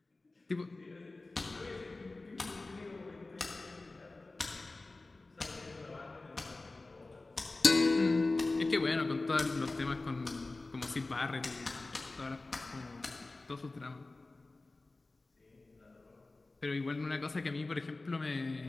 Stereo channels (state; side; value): quieter; right; 3.2 dB